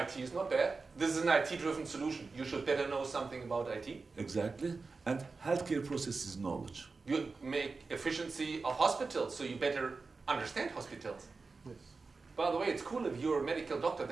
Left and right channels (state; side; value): quieter; left; 4.2 dB